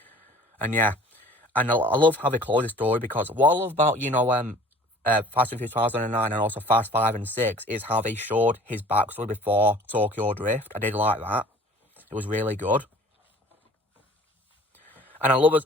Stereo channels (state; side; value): normal; both; correlation 0.48